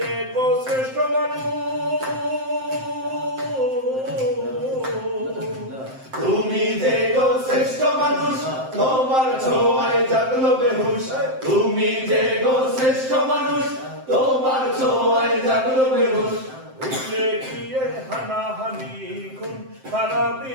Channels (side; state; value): left; late; 7.7 ms